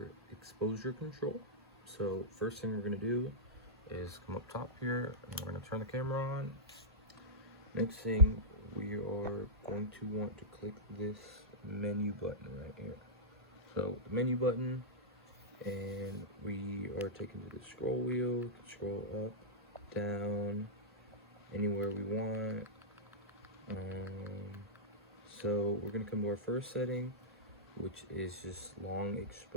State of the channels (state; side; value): normal; both; correlation -0.14